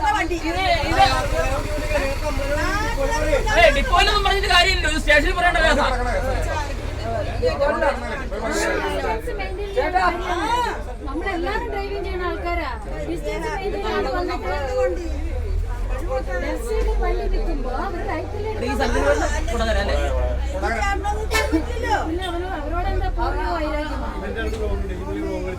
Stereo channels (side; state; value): both; identical; correlation 1.00